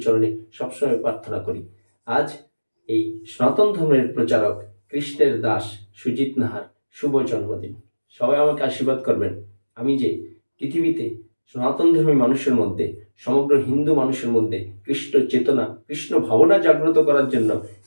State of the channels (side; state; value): both; inverted; correlation -1.00